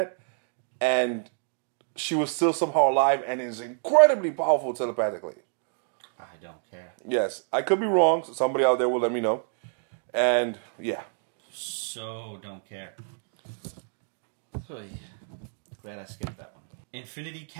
And she was still somehow alive and is incredibly powerful telepathically. I don't care. Yes, I could be wrong. So somebody out there will let me know. And yeah. So don't care. Oy. Glad I skipped that one. Infinity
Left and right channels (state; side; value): silent; left; digital silence